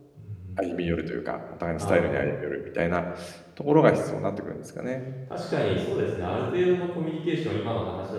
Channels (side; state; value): both; identical; correlation 1.00